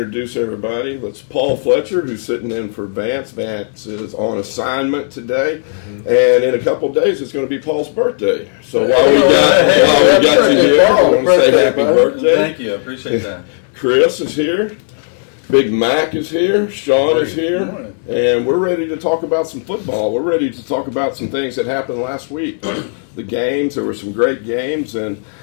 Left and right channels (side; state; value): right; silent; 60 dB below the other